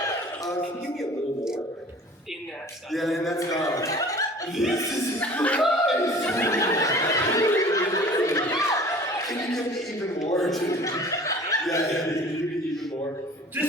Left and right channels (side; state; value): both; normal; correlation 0.46